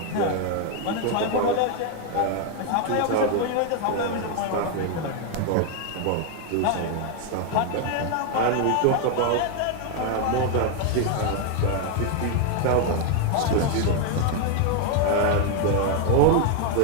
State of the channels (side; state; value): both; different; correlation 0.01